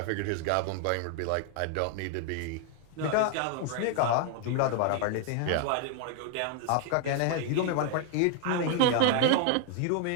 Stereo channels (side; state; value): both; different; correlation 0.00